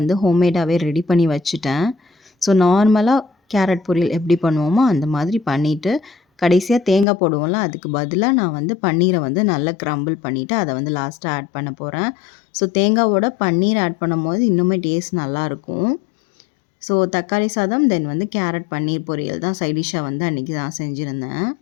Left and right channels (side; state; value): right; drops out; at 7.1 s